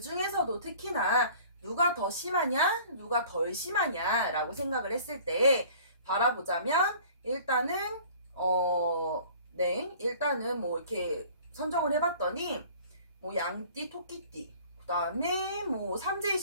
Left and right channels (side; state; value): both; inverted; correlation -0.49